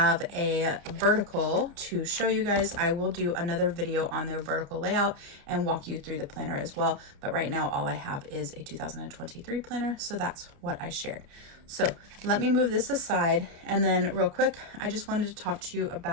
a vertical to show you guys, I will do another video on their vertical layout and walk you through the planner as well. But right now all I have is a 2023 planner, so that's what I shared. So let me move this aside, and then real quick, I just wanted to talk to you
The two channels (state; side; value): late; left; 29 ms